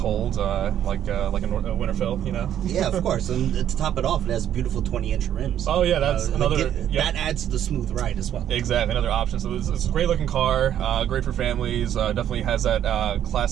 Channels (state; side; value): quieter; left; 10.5 dB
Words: like a Winterfell, you know. Yeah, of course, and to top it off, it has beautiful 20-inch rims. Oh yeah, that's another. That adds to the smooth ride as well. Exactly, another option. So it's a great looking car, great for families. Definitely has that